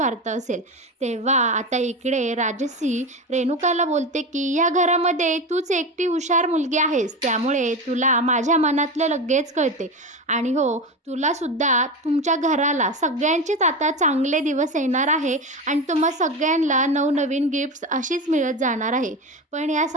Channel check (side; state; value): both; normal; correlation 0.21